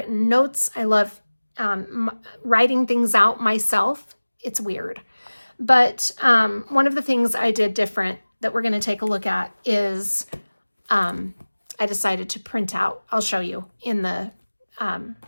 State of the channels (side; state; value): both; inverted; correlation -1.00